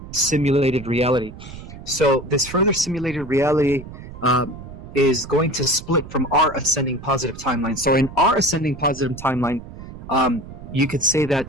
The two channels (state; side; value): noise; right; rumble, 14 dB below the sound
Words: simulated reality. So this further simulated reality is going to split from our ascending positive timeline. So in our ascending positive timeline, you could say